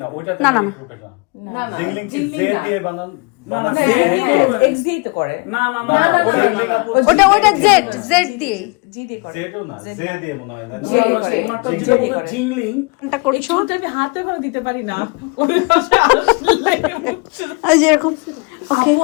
না ওইটা না, না, না। গ্রুপে না। না না জিংলিং কি জিংলিং জে না। দিয়ে বানান না, হ্যাঁ, জে দিয়ে হ্যাঁ, X দিয়েই তো করে। না না না না, না, ওটা ওটা জিংলিং আপু ওটা জেড দিয়ে জি দিয়ে করে। জেডও না জে দিয়ে মনে হয় না জে ওনার করে। ওনারটা জি যেটা দিয়ে বলে করে। জিংলিং এটা এই করছো চুলটা আমি হাতে করে দিতে পারি না ওরে পাশে আসলে আর যেরকম ওকে আপু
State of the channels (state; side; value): quieter; right; 30.1 dB